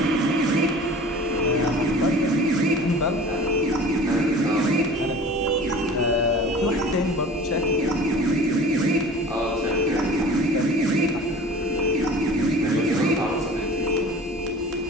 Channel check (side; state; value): both; normal; correlation 0.42